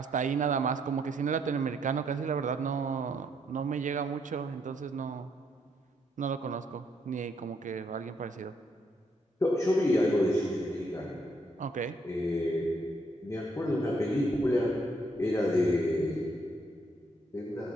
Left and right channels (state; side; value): normal; both; correlation 0.72